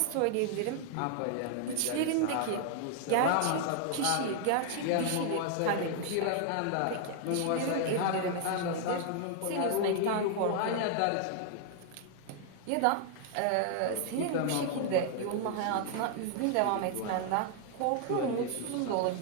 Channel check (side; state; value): both; different; correlation 0.00